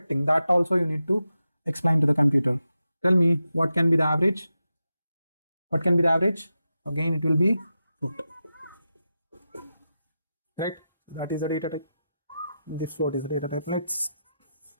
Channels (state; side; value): inverted; both; correlation -0.90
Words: that also you need to explain to the computer. Tell me, what can be the average? What can be the average? Again, it will be float. Right? That is the data type. This float is the data type. Let's.